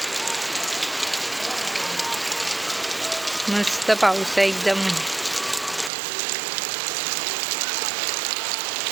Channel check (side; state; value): left; drops out; at 5.9 s